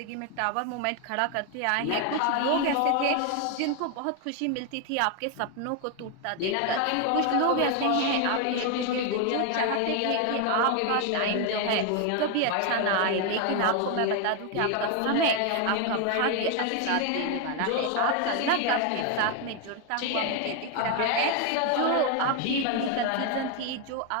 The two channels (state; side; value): different; both; correlation 0.01